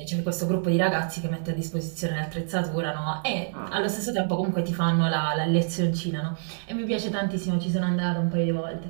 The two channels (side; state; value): left; silent; digital silence